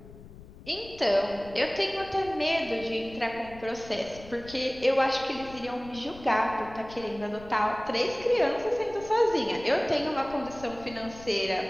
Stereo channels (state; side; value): noise; left; rumble, 18 dB below the sound